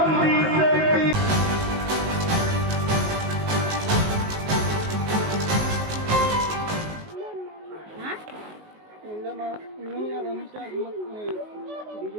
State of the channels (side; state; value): left; late; 19 ms